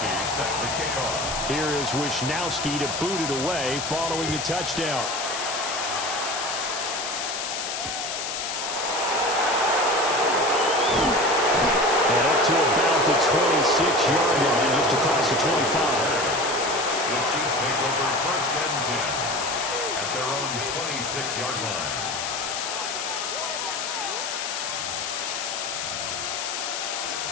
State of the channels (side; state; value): left; noise; hiss, 4 dB below the sound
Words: set to kick off. Here is Wishnowsky to boot it away following the touchdown. And up to about the 26-yard line, just across the 25. The Chiefs take over first and 10 at their own 26-yard line.